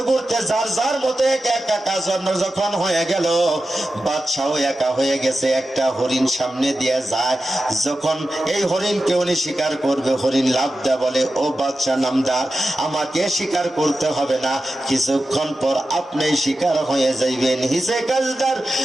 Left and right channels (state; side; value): normal; both; correlation 0.92